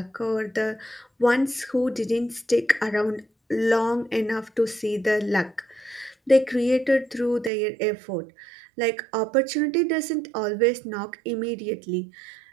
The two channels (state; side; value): drops out; left; at 7.5 s